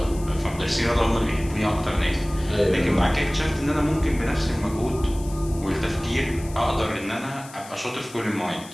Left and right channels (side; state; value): left; noise; hiss, 18 dB below the sound